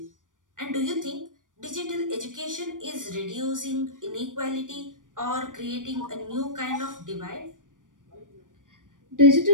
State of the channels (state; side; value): late; left; 0.88 ms